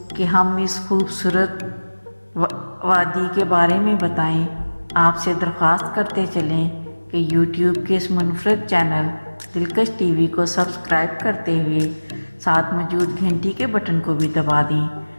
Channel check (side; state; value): both; inverted; correlation -1.00